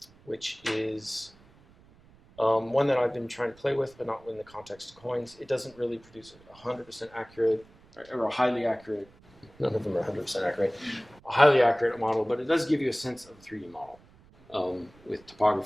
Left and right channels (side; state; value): right; noise; rumble, 27 dB below the sound